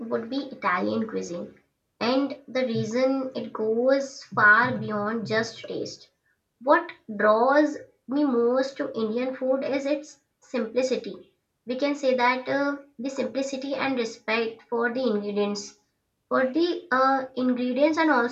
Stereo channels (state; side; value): identical; both; correlation 1.00